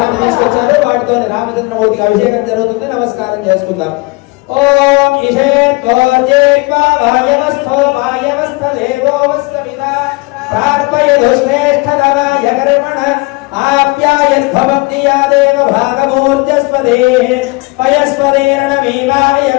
తీసుకొచ్చారు. వాటితో రామచంద్రమూర్తికి అభిషేకం జరుగుతుంది. నమస్కారం చేసుకుందాం. ఓం ఇషేత్వోర్జేత్వా వాయవస్థో వాయవస్థదేవో వస్తమిదా ప్రార్పయదుశ్రేష్ఠతమాయ కర్మణ ఆప్యాయద్భవతి యా దేవ భాగమూర్జస్వదే పయస్వదేరణమీవాయ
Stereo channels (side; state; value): right; quieter; 25.6 dB